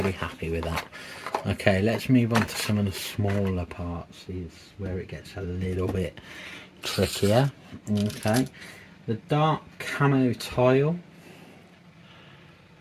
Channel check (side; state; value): both; identical; correlation 1.00